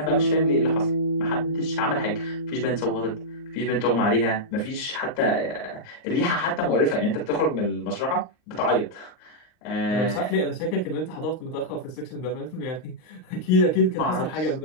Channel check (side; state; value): right; late; 39 ms